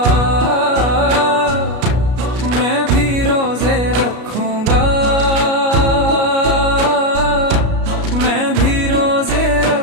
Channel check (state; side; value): late; left; 33 ms